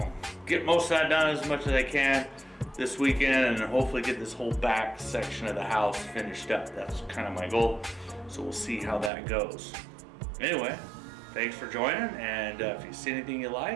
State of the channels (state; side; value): drops out; left; at 9.1 s